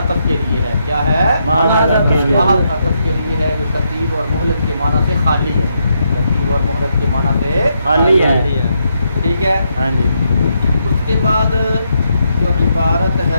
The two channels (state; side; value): inverted; both; correlation -0.79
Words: کے لیے ہے، کیا ہے؟ محض عطف کے لیے ہے، جو ترتیب اور مہلت کے معنی سے خالی ہے، ترتیب اور مہلت کے معنی سے خالی ہے، ٹھیک ہے؟ اس کے بعد جو عبارت